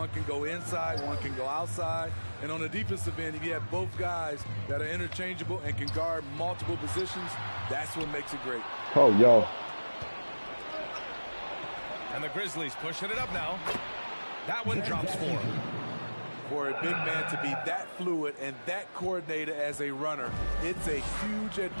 can go inside, one can go outside. And on the defensive end, if you have both guys that are interchangeable and can guard multiple positions, that's what makes it great. Oh, yo. And the Grizzlies pushing it up now. That one drops for him. For a big man to be that fluid and that coordinated as a runner, it's a huge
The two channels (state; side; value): inverted; both; correlation -1.00